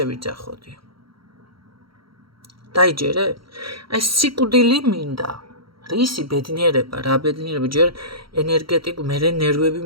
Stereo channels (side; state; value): left; late; 0.74 ms